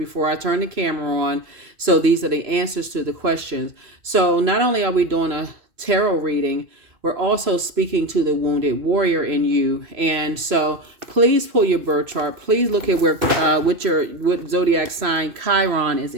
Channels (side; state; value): left; late; 2.6 ms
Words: I turn the camera on. So these are the answers to the questions. So not only are we doing a tarot reading, we're also speaking to the wounded warrior in you. And so please pull your birth chart. Please look at what zodiac sign Chiron is